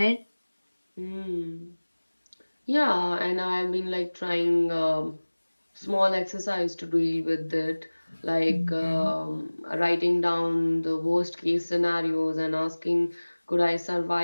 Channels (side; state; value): both; inverted; correlation -1.00